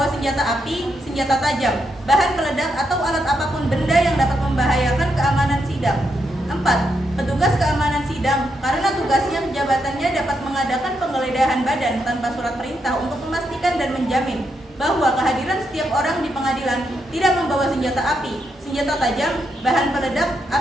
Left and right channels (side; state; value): both; normal; correlation 0.81